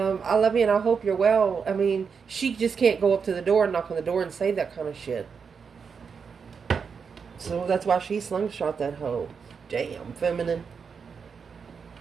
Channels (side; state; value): left; quieter; 6.0 dB